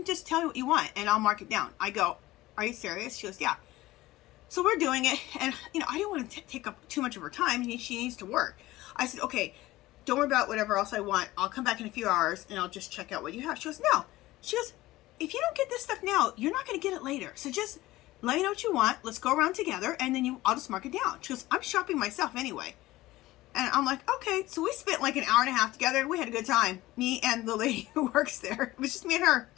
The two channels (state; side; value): quieter; right; 17.6 dB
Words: just tell me what you want and I'll mark it down. I go, are you serious? She goes, yeah. So we're doing it, and you know, I didn't want to take up too much of her time. She needs to work. I said, okay, don't worry about whatever else I want. I'll come back in a few hours and I'll just check out what you have. She goes, no. She goes, if you don't get this stuff now, you're not going to get it later. So just let me know what you want. Let's go around together, and then I'll just mark it down. She goes, I'm shopping myself anyway. And I'm like, okay. So we spent like an hour and a half together. We had a good time. Me and the lady who works there. It was just me and her